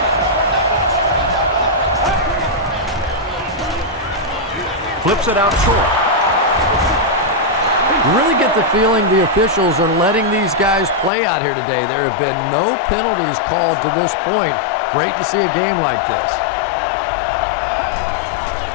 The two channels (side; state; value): right; drops out; at 11.1 s